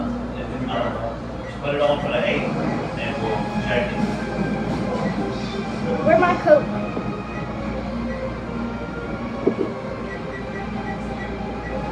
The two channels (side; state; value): both; identical; correlation 1.00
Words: If not, put it on for the 8 and we'll check it. Where's my coat?